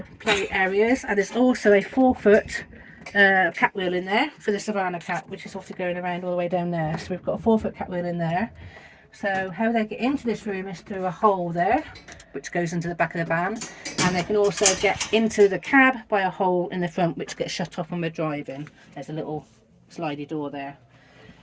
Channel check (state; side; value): identical; both; correlation 1.00